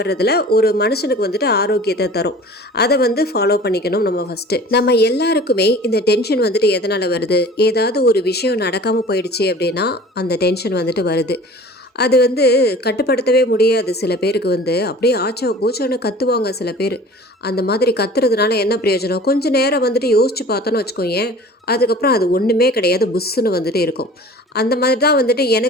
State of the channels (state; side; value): normal; both; correlation 0.43